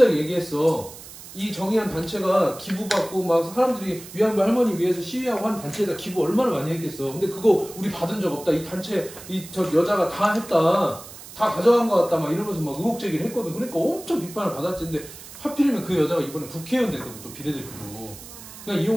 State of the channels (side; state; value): right; noise; hiss, 16 dB below the sound